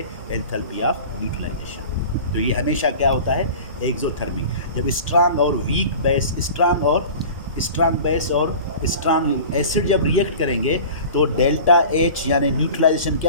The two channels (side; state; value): both; inverted; correlation -0.39